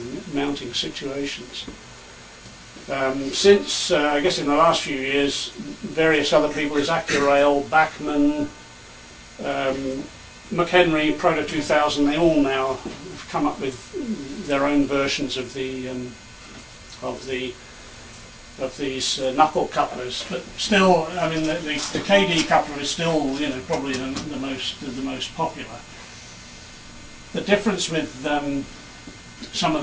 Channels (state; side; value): identical; both; correlation 1.00